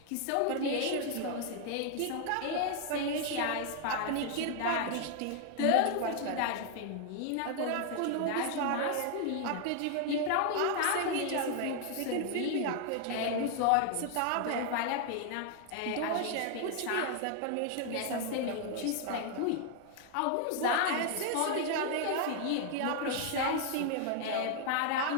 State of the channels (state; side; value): different; both; correlation 0.00